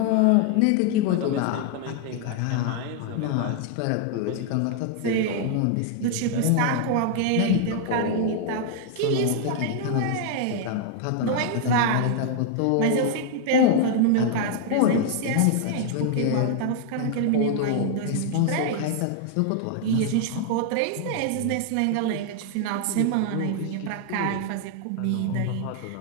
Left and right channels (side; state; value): both; different; correlation 0.00